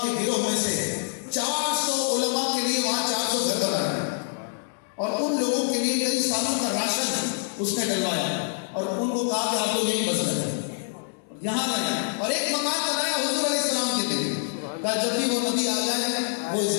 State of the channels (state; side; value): silent; right; digital silence